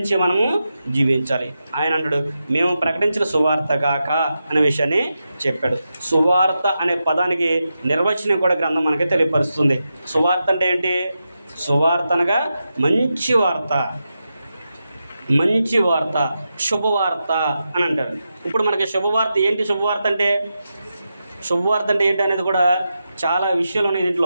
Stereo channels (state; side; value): inverted; both; correlation -0.89